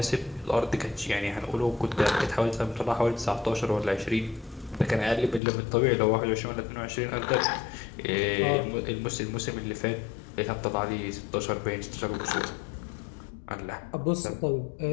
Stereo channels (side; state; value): right; drops out; at 5.4 s